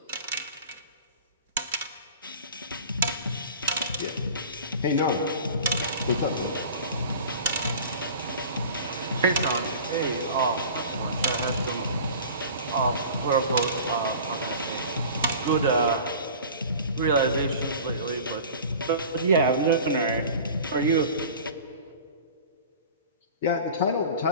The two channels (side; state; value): both; inverted; correlation -0.40